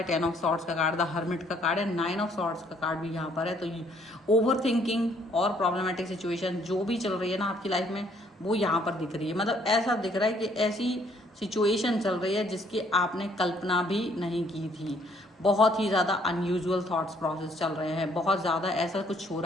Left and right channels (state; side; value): normal; both; correlation 0.65